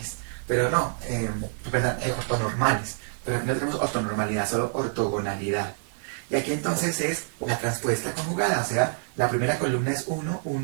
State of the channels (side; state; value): left; silent; 60 dB below the other